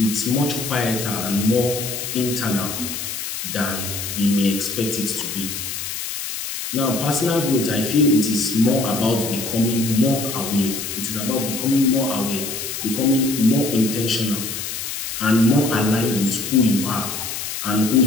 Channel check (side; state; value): left; noise; hiss, 6 dB below the sound